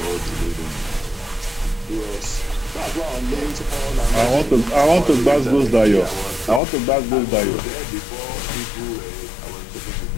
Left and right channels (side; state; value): right; drops out; at 6.6 s